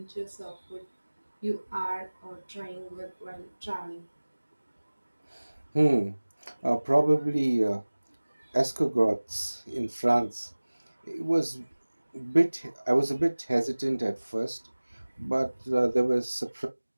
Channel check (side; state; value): both; inverted; correlation -1.00